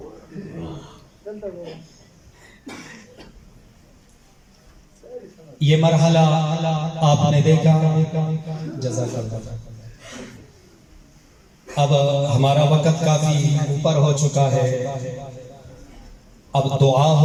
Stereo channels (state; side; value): identical; both; correlation 1.00